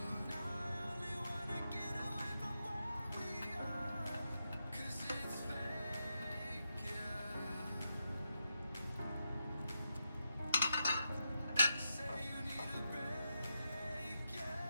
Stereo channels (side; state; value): both; inverted; correlation -0.86